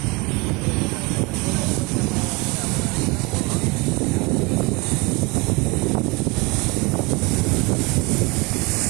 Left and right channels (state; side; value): quieter; left; 26.2 dB